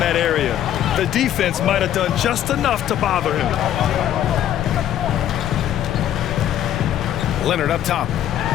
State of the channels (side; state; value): right; quieter; 11.1 dB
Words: that area. The defense might have done just enough to bother him. Leonard up top.